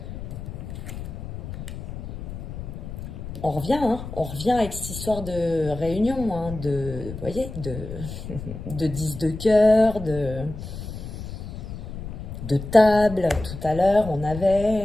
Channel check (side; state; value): left; noise; rumble, 9 dB below the sound